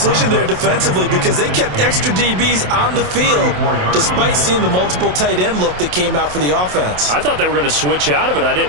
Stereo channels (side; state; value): left; late; 27 ms